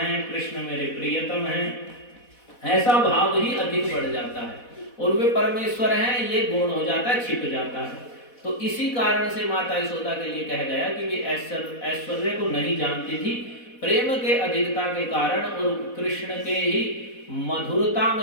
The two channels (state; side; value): late; right; 4.1 ms